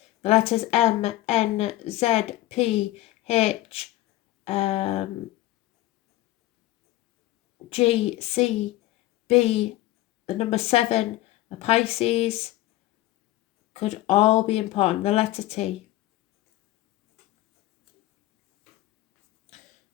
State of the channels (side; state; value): right; quieter; 16.4 dB